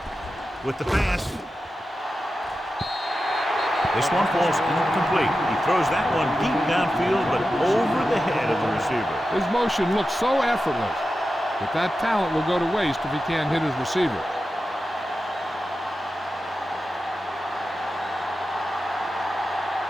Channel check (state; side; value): normal; both; correlation 0.92